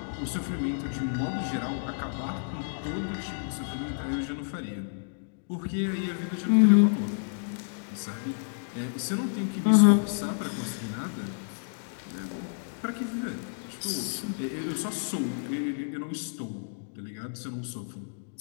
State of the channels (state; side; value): silent; right; digital silence